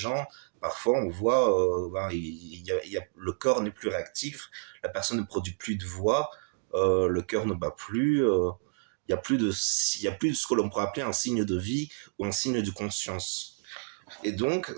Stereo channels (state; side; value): silent; left; 58 dB below the other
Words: parfois, on voit, le corps n'est plus réactif, la personne ne produit plus de voix, le cœur ne bat plus. Il y a plus de ce que l'on pourrait appeler un signe de vie ou un signe de conscience. Et donc,